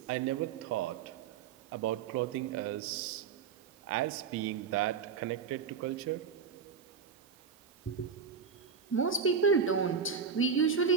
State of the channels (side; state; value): left; quieter; 6.5 dB